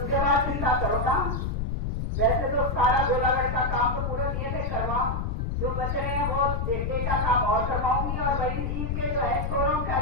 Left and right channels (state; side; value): noise; left; rumble, 1 dB below the sound